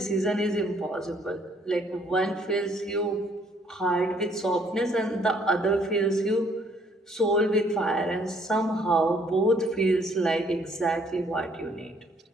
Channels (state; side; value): normal; both; correlation 0.64